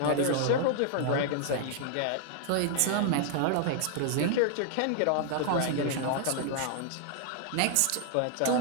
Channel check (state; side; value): different; both; correlation 0.00